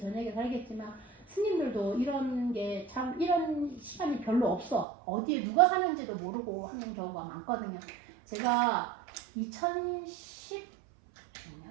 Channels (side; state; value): left; drops out; at 4.9 s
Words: 살겠지만 스님들도 이런 게 참 이런 시간이 별로 없어. 어디에 누가 사는지도 모르고 하는 경우가 많거든요. 제가 2010년인가